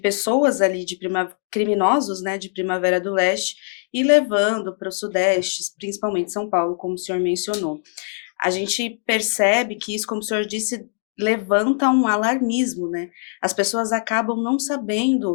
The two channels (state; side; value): silent; right; digital silence